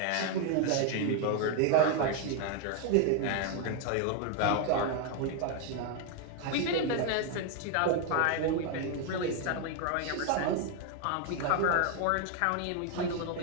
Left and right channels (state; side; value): different; both; correlation 0.01